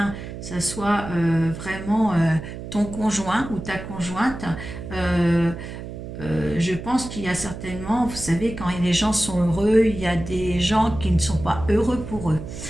ça soit vraiment ton conjoint ou ta conjointe. Je pense qu'il y a certainement, vous savez, quand les gens sont heureux, il y a des gens qui ne sont pas heureux pour eux.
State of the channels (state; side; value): noise; right; hum, 10 dB below the sound